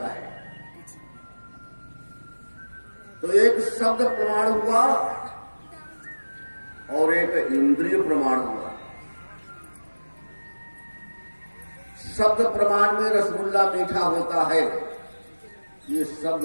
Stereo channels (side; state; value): both; inverted; correlation -1.00